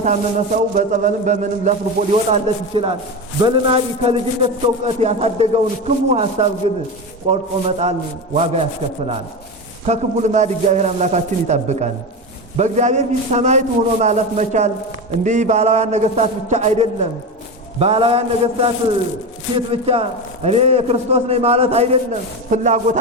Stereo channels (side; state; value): both; normal; correlation 0.20